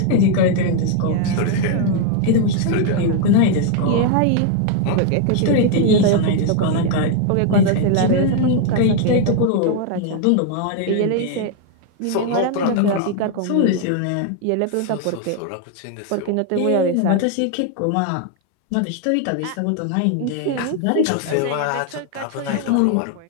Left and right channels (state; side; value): different; both; correlation 0.00